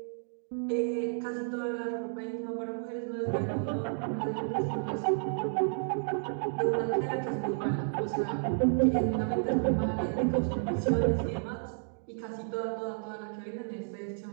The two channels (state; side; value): silent; left; digital silence